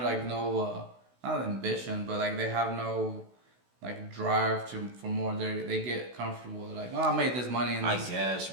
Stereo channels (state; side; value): late; left; 16 ms